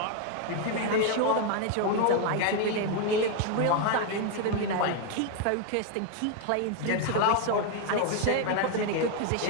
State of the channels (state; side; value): different; both; correlation 0.01